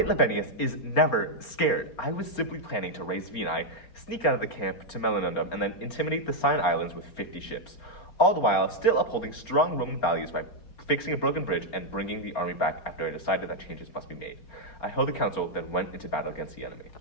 Labienus is never scared. I was simply planning to raise Venae, sneak out of the camp to Melinundum, and then intimidate the Sign Islands with 50 ships. All the while, still upholding strong Roman values by fixing a broken bridge and bringing the army back after I decided that changes must be made. I held a council, then went into battle against the enemy.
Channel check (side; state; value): right; late; 4.4 ms